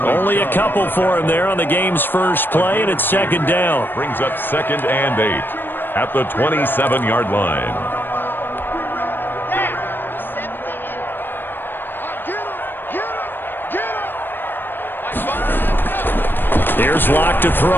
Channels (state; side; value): late; right; 0.095 ms